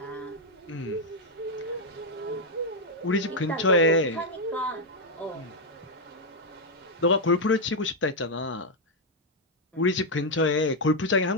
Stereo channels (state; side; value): normal; both; correlation 0.00